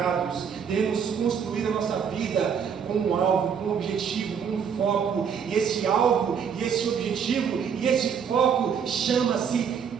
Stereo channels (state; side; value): quieter; left; 7.2 dB